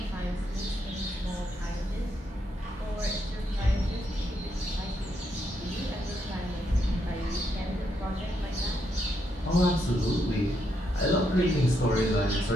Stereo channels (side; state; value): both; normal; correlation 0.78